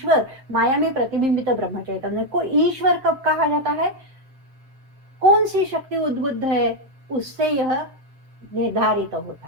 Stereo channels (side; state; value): left; late; 7.6 ms